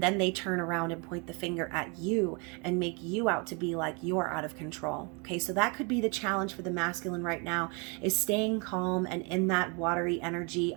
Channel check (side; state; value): left; quieter; 32.6 dB